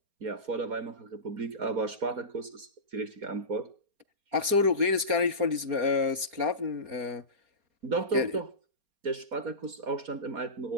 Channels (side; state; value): left; late; 4.3 ms